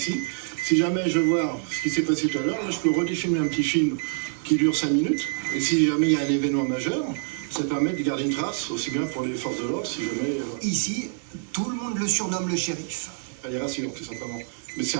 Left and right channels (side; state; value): left; silent; digital silence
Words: Si jamais je vois ce qui s'est passé tout à l'heure, là, je peux redéfilmer un petit film qui dure 5 minutes. Et si jamais il y a un événement majeur, ça permet de garder une trace, aussi bien pour les forces de l'ordre, si jamais... Ici, tout le monde le surnomme le shérif. Ça les rassure, tout simplement. Mais c'est